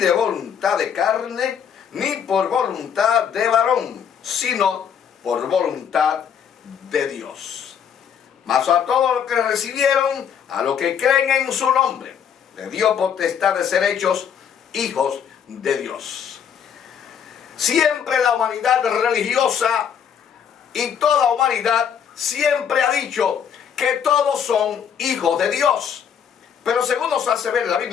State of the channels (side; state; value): right; quieter; 8.0 dB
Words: voluntad de carne, ni por voluntad de varón, sino por voluntad de Dios. Mas a todos los que recibieron, a los que creen en su nombre, le dio potestad de ser hechos hijos de Dios. Siempre la humanidad religiosa y toda humanidad siempre ha dicho que todos son hijos de Dios. Pero según nos hace ver la